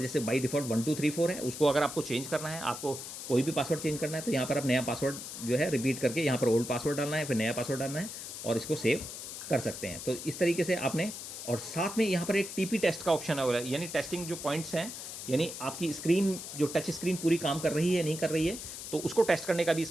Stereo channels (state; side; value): noise; left; hiss, 9 dB below the sound